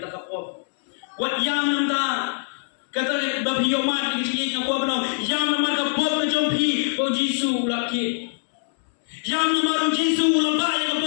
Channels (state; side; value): silent; right; digital silence